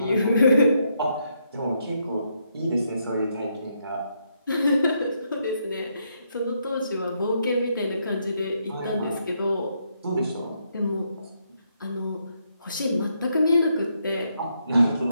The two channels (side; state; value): both; inverted; correlation -0.77